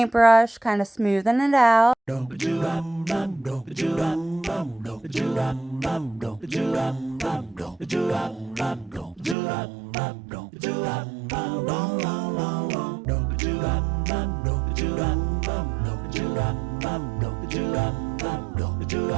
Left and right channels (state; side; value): drops out; left; at 9.3 s